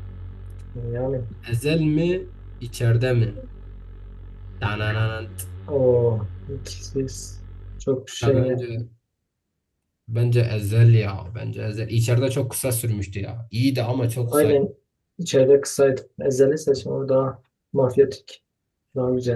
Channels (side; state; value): both; identical; correlation 1.00